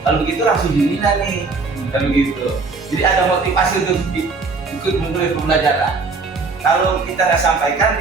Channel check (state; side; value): quieter; left; 4.2 dB